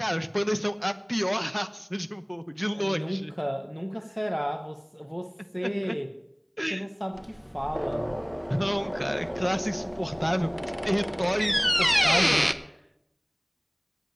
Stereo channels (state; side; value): identical; both; correlation 1.00